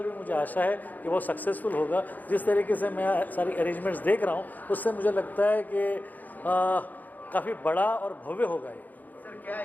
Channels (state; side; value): late; right; 0.083 ms